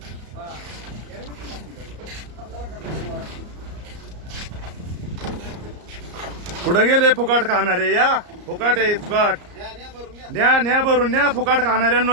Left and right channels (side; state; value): left; late; 34 ms